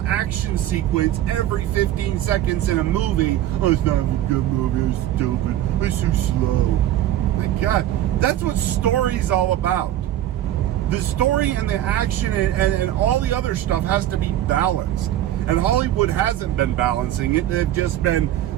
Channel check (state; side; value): quieter; left; 12.7 dB